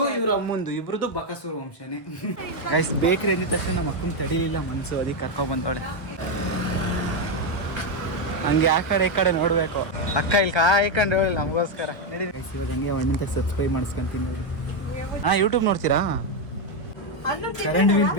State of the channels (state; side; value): late; right; 1.3 ms